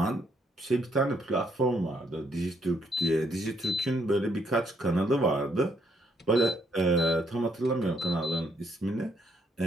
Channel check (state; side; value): normal; both; correlation 0.72